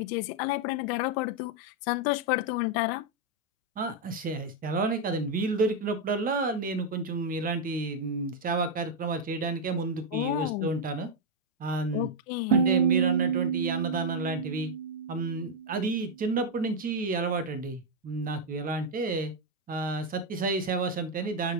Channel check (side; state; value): both; normal; correlation 0.00